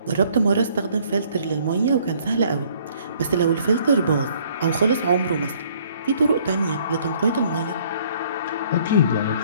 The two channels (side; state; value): both; inverted; correlation -0.61